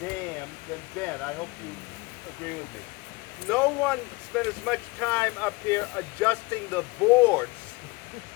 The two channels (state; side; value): quieter; right; 23.8 dB